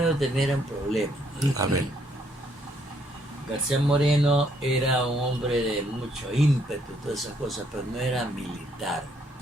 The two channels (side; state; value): both; normal; correlation 0.70